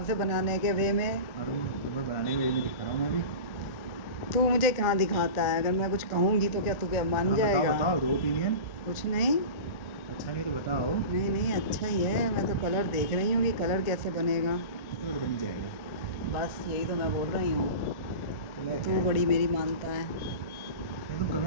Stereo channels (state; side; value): late; right; 1.4 ms